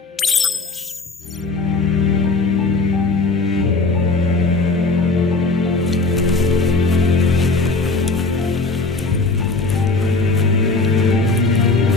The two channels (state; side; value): quieter; right; 3.7 dB